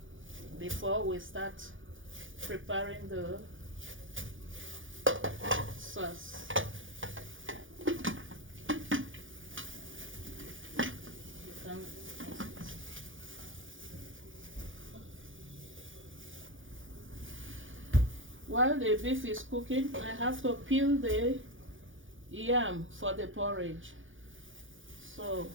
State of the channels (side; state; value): left; late; 0.57 ms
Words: before we start preparing the sauce. You can While the beef is cooking, I have to peel the yam for the porridge. So